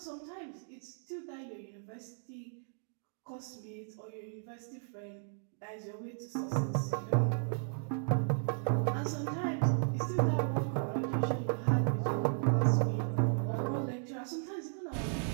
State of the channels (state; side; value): silent; left; digital silence